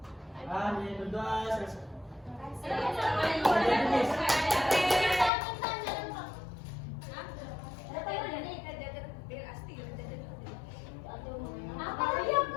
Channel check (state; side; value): drops out; right; at 5.3 s